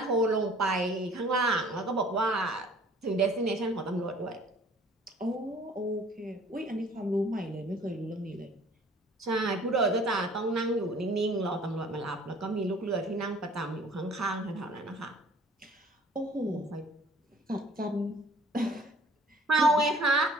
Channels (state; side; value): normal; both; correlation 0.52